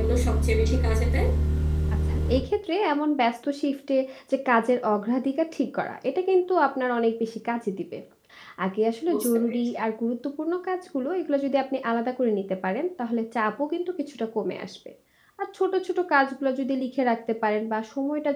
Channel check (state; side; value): identical; both; correlation 1.00